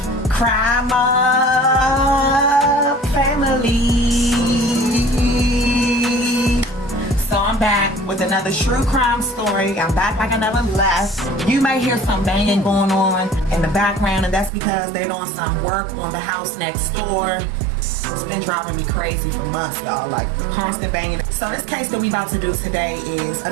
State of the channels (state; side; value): drops out; left; at 14.5 s